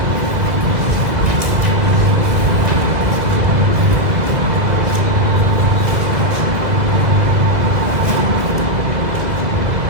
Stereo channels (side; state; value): left; late; 1.9 ms